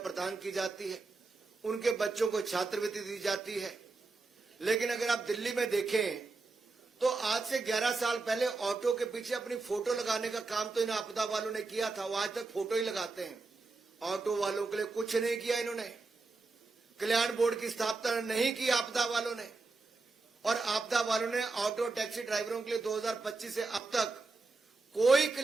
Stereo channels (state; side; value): quieter; left; 3.8 dB